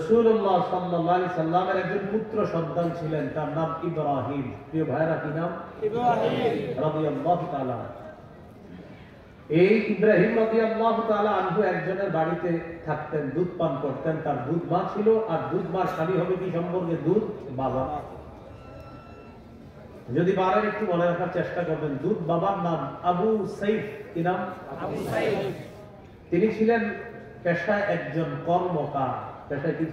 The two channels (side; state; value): both; identical; correlation 1.00